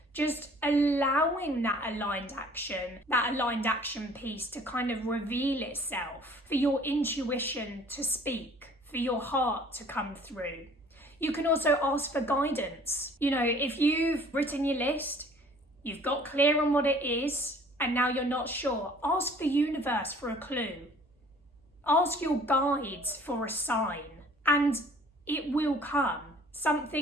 just allowing that aligned action piece to kind of reveal itself, for your intuition to speak, for your heart to come through. You can also ask for guidance. If you've written your list, you've got clear on what it is, and now you're not sure, ask the universe for a clue. Ask your guides for a sign, and it will come.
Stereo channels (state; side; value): normal; both; correlation 0.52